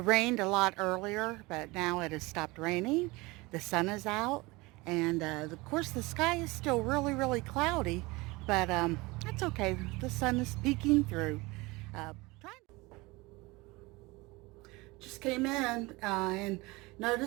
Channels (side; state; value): left; quieter; 23.1 dB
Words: a lot earlier, but now it has stopped raining. The sun is out, and of course the sky is still really cloudy, but that's okay. The sun is peeking through. Uh, just came in and